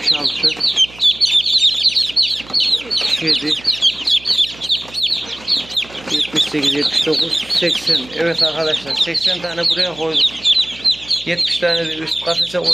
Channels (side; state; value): right; noise; hum, 21 dB below the sound